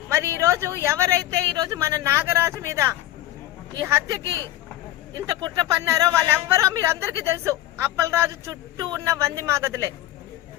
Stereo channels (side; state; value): right; quieter; 14.5 dB